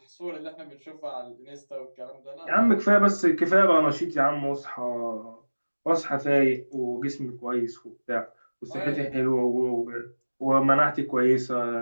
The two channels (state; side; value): inverted; both; correlation -1.00